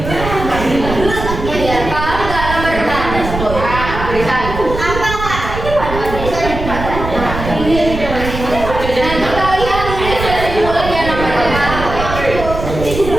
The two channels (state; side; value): noise; right; rumble, 7 dB below the sound